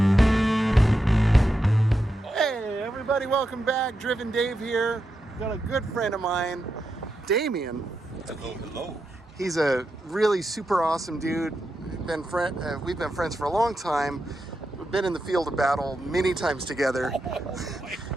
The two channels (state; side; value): normal; both; correlation 0.87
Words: Hey, everybody, welcome back. Driven Dave here. Got a good friend of mine, Damion. Hello, hello. He's a really super awesome dude. We've been friends for a long time. We've been in the field of battle many times together.